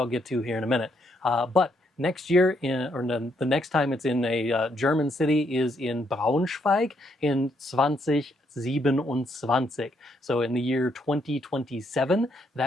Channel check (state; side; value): normal; both; correlation 0.74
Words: get to here in a minute. But next year, the next time it's in a German city is in Braunschweig in 2027. So in the year 2027,